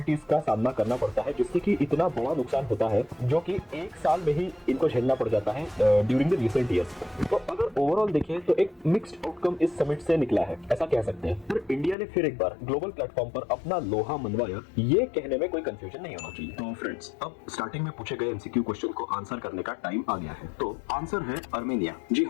का सामना करना पड़ता है जिससे कि इतना बड़ा नुकसान होता है जो कि एक साल में ही इनको झेलना पड़ जाता है ड्यूरिंग द रिसेंट ईयर्स। तो अगर ओवरऑल देखें तो एक मिक्स्ड आउटकम इस समिट से निकला है, ऐसा कह सकते हैं। पर इंडिया ने फिर एक बार ग्लोबल प्लेटफॉर्म पर अपना लोहा मनवाया, ये कहने में कोई कंफ्यूजन नहीं होना चाहिए। तो फ्रेंड्स, अब स्टार्टिंग में पूछे गए एमसीक्यू क्वेश्चन को आंसर करने का टाइम आ गया है। तो आंसर है अर्मेनिया। जी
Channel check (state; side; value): drops out; right; at 12.0 s